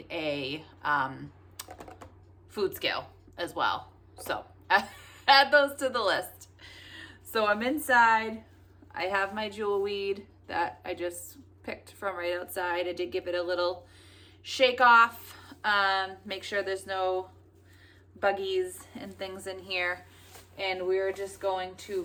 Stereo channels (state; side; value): identical; both; correlation 1.00